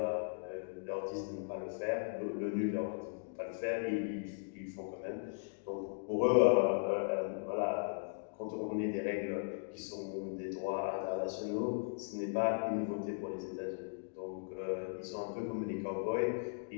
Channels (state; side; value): silent; right; digital silence